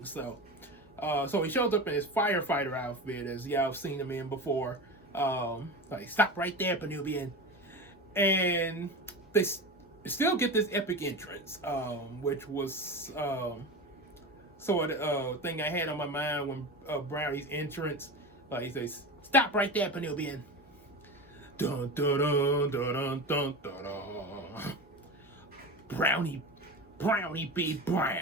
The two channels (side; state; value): both; normal; correlation 0.27